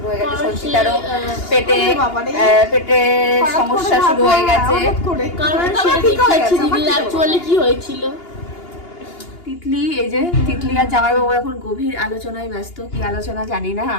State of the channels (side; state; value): right; late; 2.8 ms